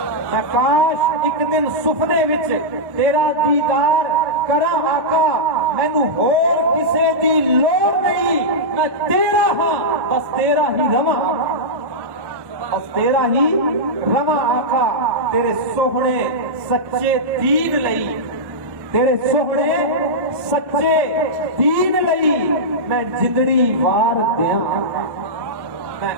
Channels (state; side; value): late; left; 1.1 ms